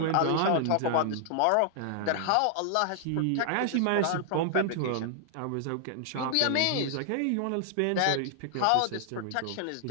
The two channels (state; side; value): different; both; correlation -0.01